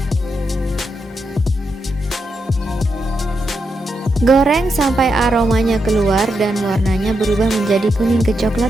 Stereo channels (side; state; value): both; normal; correlation 0.84